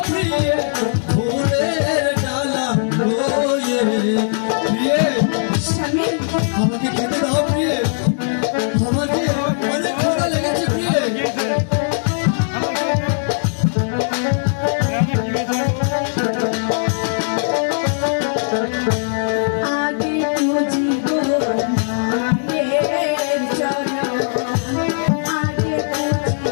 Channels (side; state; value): right; silent; 59 dB below the other